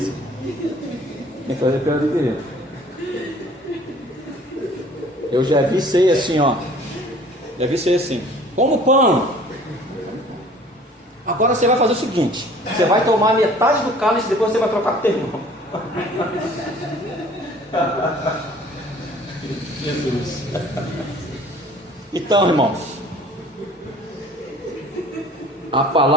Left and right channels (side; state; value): both; normal; correlation 0.51